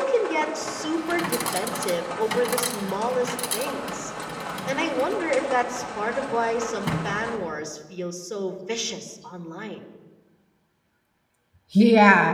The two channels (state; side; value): identical; both; correlation 1.00